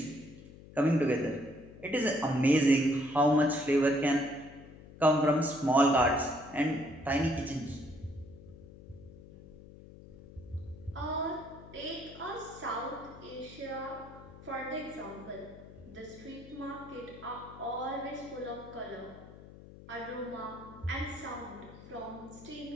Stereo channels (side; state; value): left; noise; hum, 18 dB below the sound